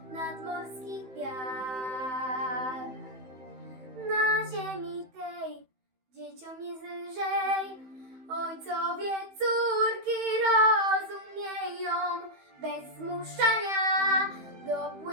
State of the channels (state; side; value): late; left; 15 ms